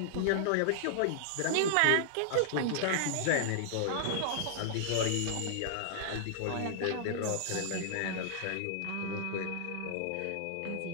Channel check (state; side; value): different; both; correlation -0.01